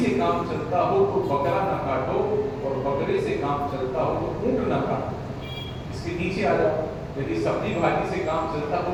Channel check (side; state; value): both; identical; correlation 1.00